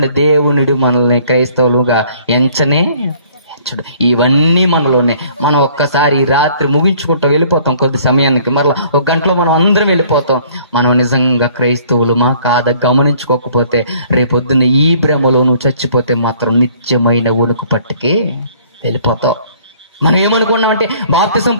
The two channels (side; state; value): both; inverted; correlation -0.57